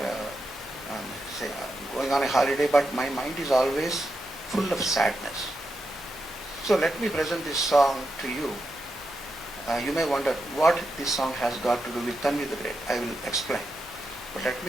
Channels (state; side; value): normal; both; correlation 0.86